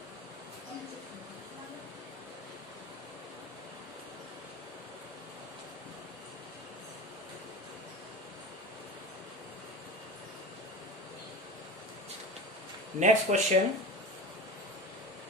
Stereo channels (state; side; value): normal; both; correlation 0.30